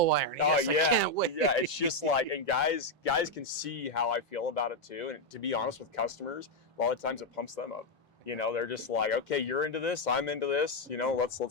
iron. Oh yes, yeah, I can't wait. Yeah. It's just like, and guys can see how I feel about it too. And to be honest with customers, a lot of times it pumps them up. They're just like, okay, you're into this, I'm into this.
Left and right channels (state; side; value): normal; both; correlation 0.03